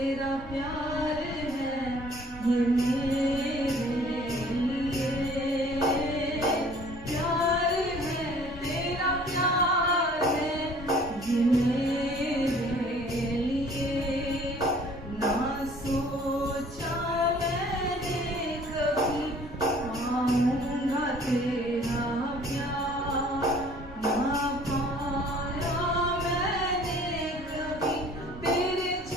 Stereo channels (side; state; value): both; normal; correlation 0.53